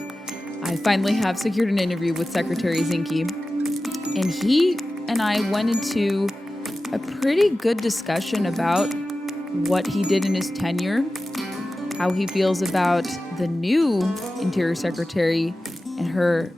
I finally have secured an interview with Secretary Zinke, and he and I went into a pretty good discussion about what he did in his tenure, how he feels about the new Interior Secretary and her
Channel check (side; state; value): both; normal; correlation 0.95